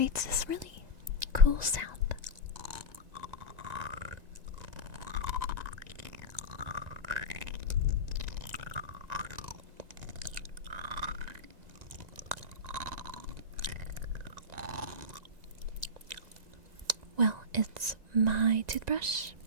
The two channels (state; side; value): late; left; 1.9 ms